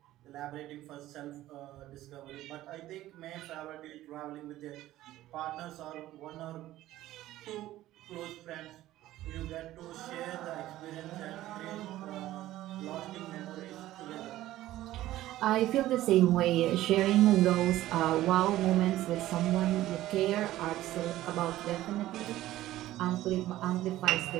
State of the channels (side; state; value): left; quieter; 14.9 dB